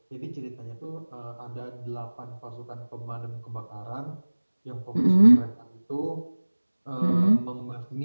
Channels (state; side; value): inverted; both; correlation -1.00